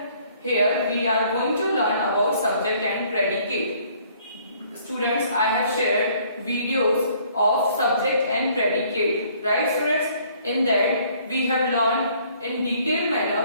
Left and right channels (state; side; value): inverted; both; correlation -0.61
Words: Here we are going to learn about subject and predicate. Students, I have shared videos of subject and predicate. Right students? In that we have learned in detailed